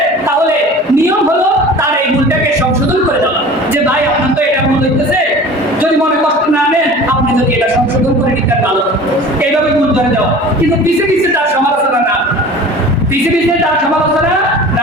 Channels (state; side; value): normal; both; correlation 0.40